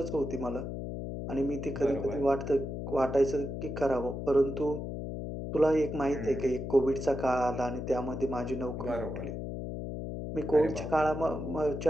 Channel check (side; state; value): left; noise; hum, 5 dB below the sound